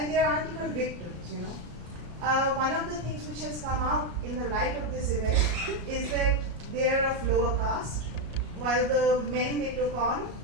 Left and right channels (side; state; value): left; late; 33 ms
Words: they aren't even victims, One of the things which has come out in the light of this event is that they are of lower caste, while the men they took on